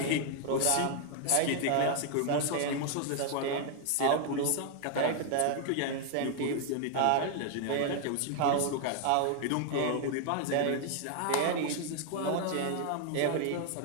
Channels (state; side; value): different; both; correlation 0.00